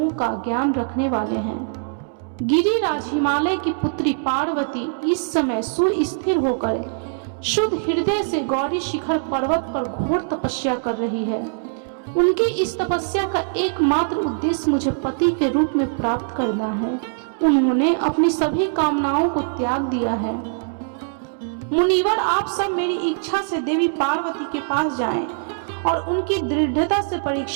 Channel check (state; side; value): silent; left; digital silence